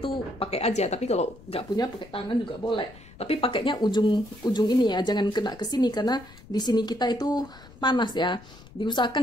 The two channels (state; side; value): noise; left; rumble, 21 dB below the sound